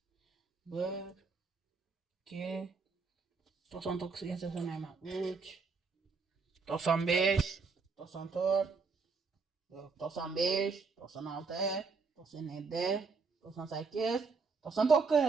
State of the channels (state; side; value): quieter; left; 4.7 dB